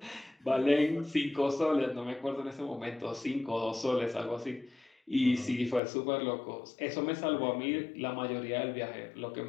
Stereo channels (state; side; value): drops out; right; at 5.8 s